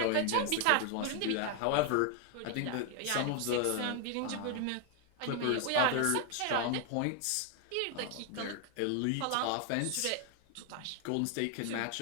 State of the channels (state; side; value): different; both; correlation 0.00